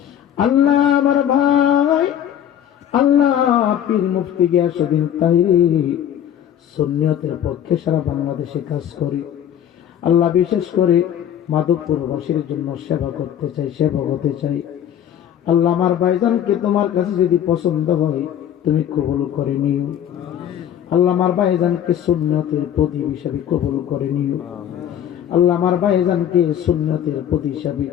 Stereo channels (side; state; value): right; quieter; 10.1 dB